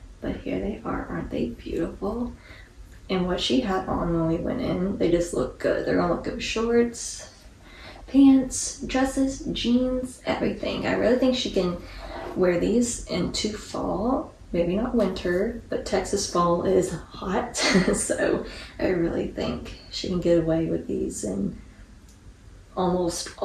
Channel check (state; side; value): identical; both; correlation 1.00